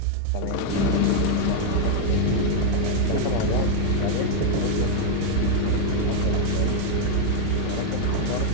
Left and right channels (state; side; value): different; both; correlation 0.00